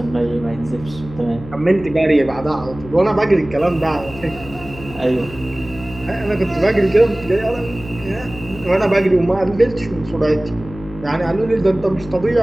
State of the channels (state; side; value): noise; left; hum, 15 dB below the sound